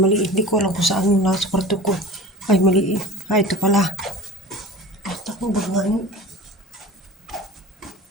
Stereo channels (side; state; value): both; normal; correlation 0.38